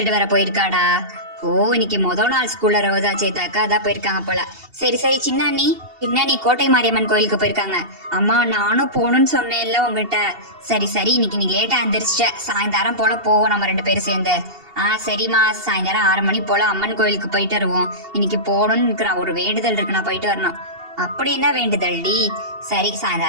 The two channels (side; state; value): left; late; 2.7 ms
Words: வர போயிருக்காடா. ஓ இன்னைக்கு முதல் நாள் ஸ்கூல்ல ரோஜா சேத்தாக்கா அதான் போயிருக்காங்க போல. சரி சரி. சின்ன அண்ணி கோட்டை மாரியம்மன் கோயிலுக்கு போயிருக்காங்க. அம்மா நானும் போகணும்னு சொன்னேன்ல உங்ககிட்ட. சரி சரி, இன்னைக்கு நீ லேட்டா எந்திரிச்சிட்ட, சாயந்தரம் போல போவோம் நம்ம ரெண்டு பேரும் சேர்ந்து. சரிம்மா, சாயந்தரம் 6 மணி போல அம்மன் கோயிலுக்கு போயிட்டு வருவோம். இன்னைக்கு போகணும்னு இருக்கிறான், ஒரு வேண்டுதல் இருக்கு, நான் போயிட்டு வரணும். அப்படி என்ன வேண்டுதல் டி? சரி